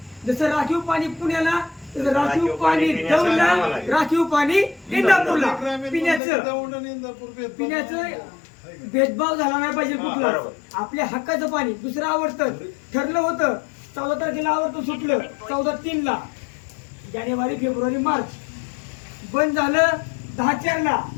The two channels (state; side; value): drops out; right; at 6.2 s